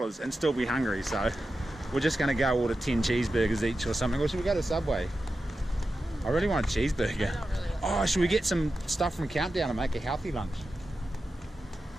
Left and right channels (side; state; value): both; normal; correlation 0.91